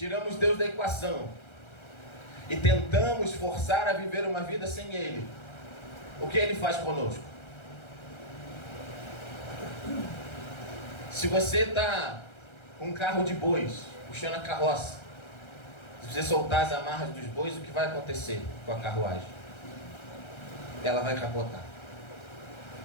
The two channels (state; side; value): late; right; 1.3 ms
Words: Deus da equação e tentamos forçar a viver uma vida sem Ele, o que Ele faz conosco? Se você está com um carro de bois, puxando a carroça, se você soltar as amarras dos bois, o que vai acontecer com a carruagem? Ela vai capotar.